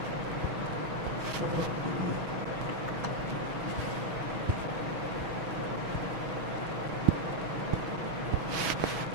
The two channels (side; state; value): left; late; 6.2 ms